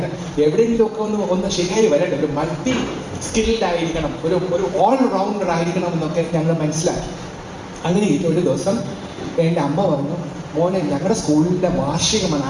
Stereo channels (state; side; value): identical; both; correlation 1.00